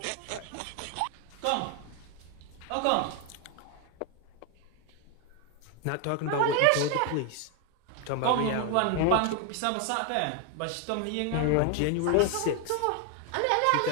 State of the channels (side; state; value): both; different; correlation 0.01